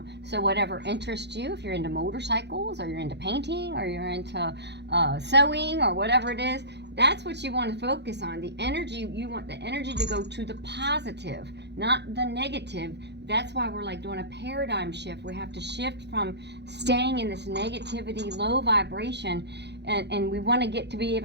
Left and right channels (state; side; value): late; left; 0.50 ms